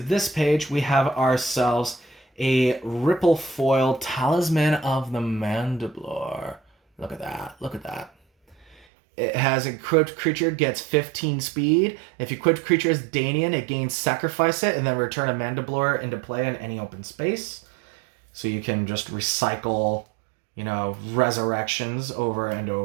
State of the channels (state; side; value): drops out; left; at 8.8 s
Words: page. We have ourselves a Ripple Foil Talisman of the Mandiblor. Look at that. Look at that. It has equipped creature gets 15 speed. If equipped creature is Danian, it gains sacrifice it and then return a Mandiblor into play in any open space. So you can just recycle, resurrections over and